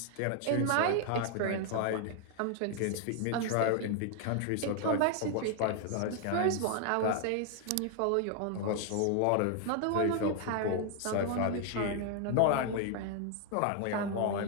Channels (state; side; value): different; both; correlation 0.00